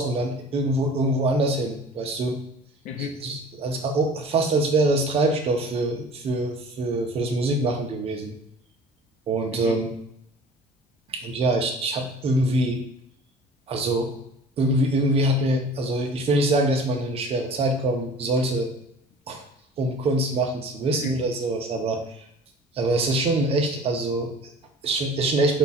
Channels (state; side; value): normal; both; correlation 0.44